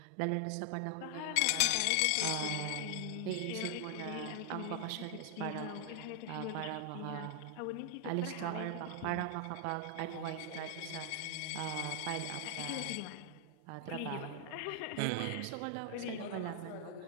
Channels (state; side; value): different; both; correlation 0.00